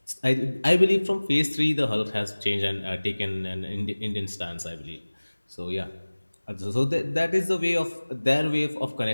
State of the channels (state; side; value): inverted; both; correlation -1.00